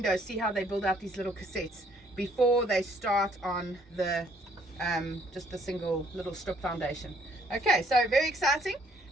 see how they build out these little cassettes before they start on the just the single little strip foundation. Okay, so very exciting,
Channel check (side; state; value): both; normal; correlation 0.65